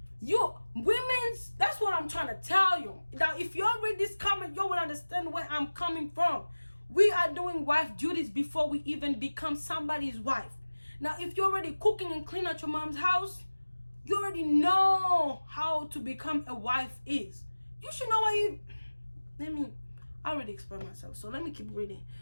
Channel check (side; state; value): both; inverted; correlation -1.00